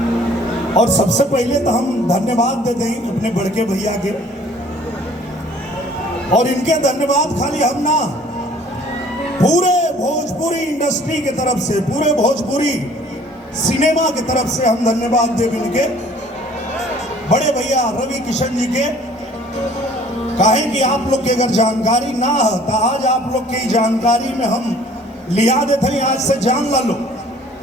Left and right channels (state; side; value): normal; both; correlation 0.54